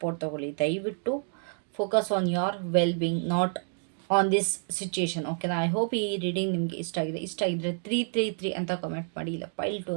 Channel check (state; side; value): silent; left; 57 dB below the other